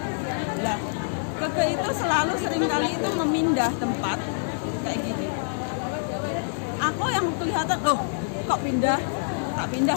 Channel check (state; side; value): silent; right; digital silence